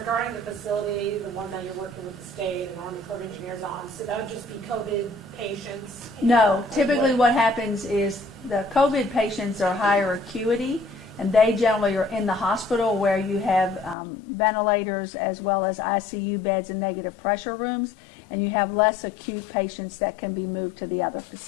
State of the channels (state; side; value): drops out; right; at 14.0 s